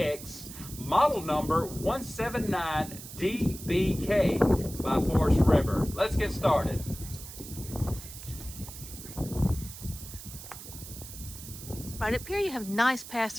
model number 179DBK by Forest River. Let's get started. Right up here you have nice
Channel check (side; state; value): right; noise; hiss, 13 dB below the sound